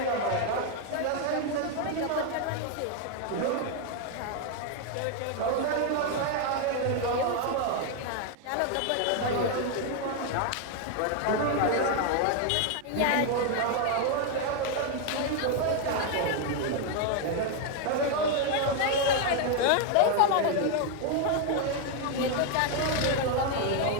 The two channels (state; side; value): different; both; correlation 0.01